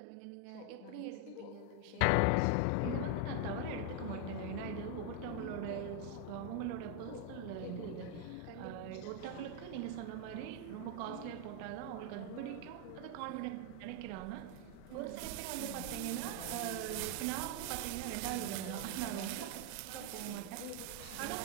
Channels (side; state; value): both; different; correlation 0.01